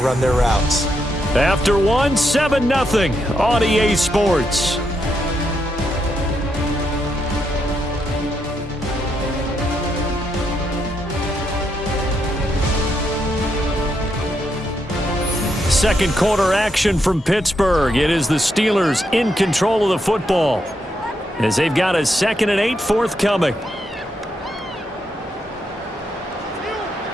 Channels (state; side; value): normal; both; correlation 0.80